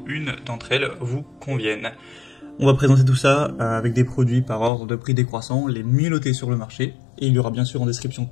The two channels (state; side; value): drops out; right; at 4.7 s